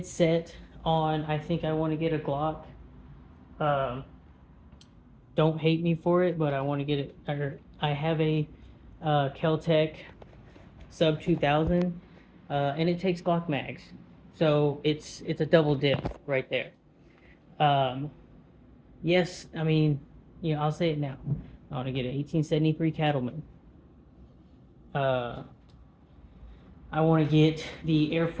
set on, I think I want to get a Glock. Don't hate me for it, but I want to get it. I have a Kel-Tec sub 2000, and it takes Glock mags, so it's a double dip right there. Yes, I mean, I'll say it now. I want to get an 1873 Cattleman. I want to get the Air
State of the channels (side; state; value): both; identical; correlation 1.00